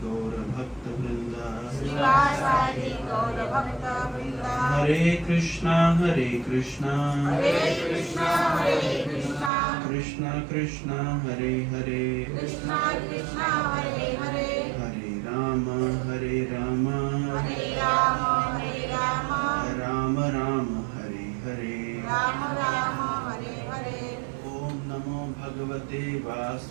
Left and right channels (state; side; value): drops out; left; at 9.5 s